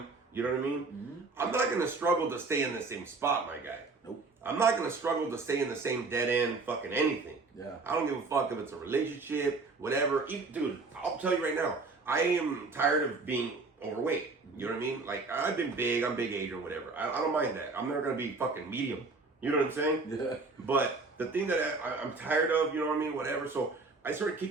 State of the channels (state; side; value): quieter; left; 3.8 dB